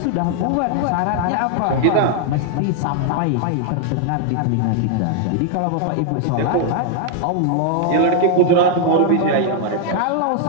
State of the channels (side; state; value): both; different; correlation 0.00